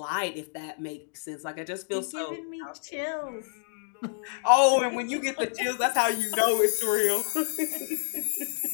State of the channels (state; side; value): silent; right; digital silence